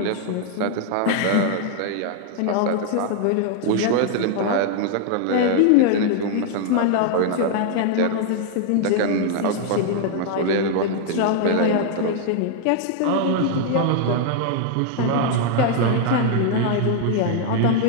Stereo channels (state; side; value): different; both; correlation 0.00